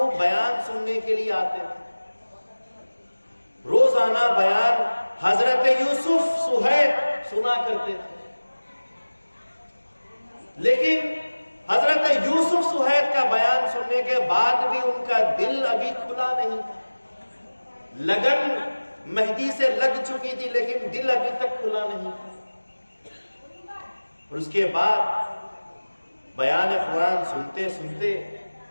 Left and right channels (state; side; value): inverted; both; correlation -1.00